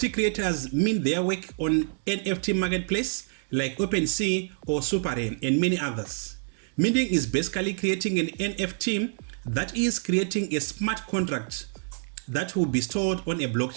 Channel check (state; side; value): silent; left; 58 dB below the other